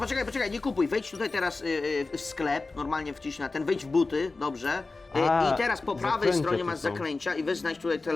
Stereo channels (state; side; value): quieter; right; 3.6 dB